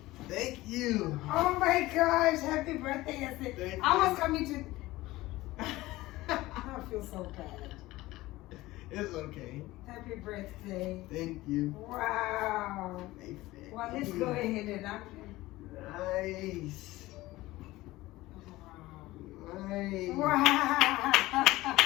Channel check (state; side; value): quieter; right; 18.3 dB